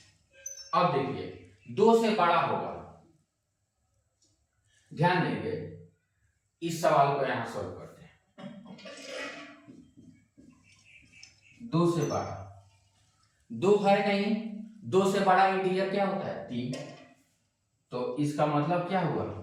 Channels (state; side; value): identical; both; correlation 1.00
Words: अब देखिए 2 से बड़ा होगा, ध्यान देंगे, इस सवाल को यहां सॉल्व करते हैं। 2 से बड़ा, 2 है नहीं, 2 से बड़ा इंटीजर क्या होता है, 3। तो इसका मतलब क्या हुआ,